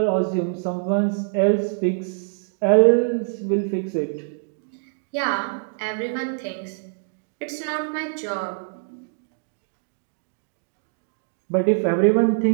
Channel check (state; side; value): silent; left; digital silence